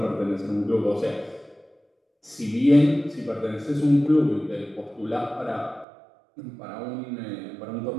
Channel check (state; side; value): drops out; left; at 5.9 s